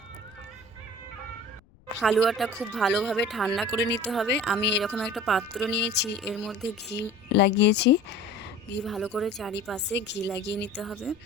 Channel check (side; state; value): left; noise; rumble, 29 dB below the sound